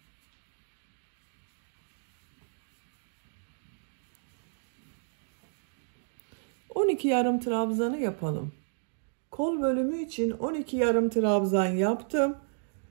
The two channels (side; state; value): left; silent; digital silence